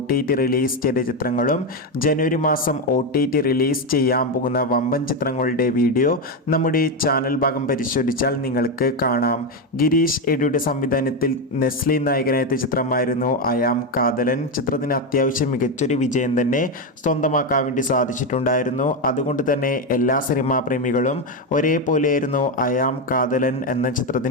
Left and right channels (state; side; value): normal; both; correlation 0.09